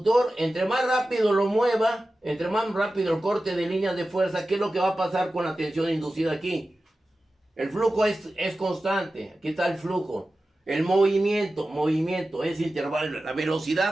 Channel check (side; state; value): both; normal; correlation 0.94